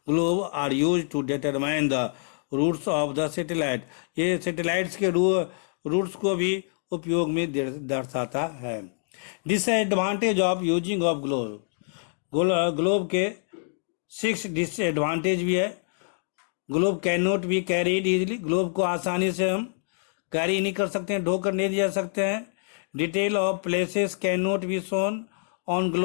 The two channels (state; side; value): silent; right; digital silence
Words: Globe are use to determine the routes of the satellite, ये सैटेलाइट्स के रूट्स को भी उपयोग में दर्शाता है। Disadvantage of using of globe, globe के 6 डिसएडवांटेज भी है। Globe can not be carried easily, globe को आसानी से हम कैरी नहीं कर सकते हैं, ढोकर नहीं जा सकते हैं। Detail of places can not be shown on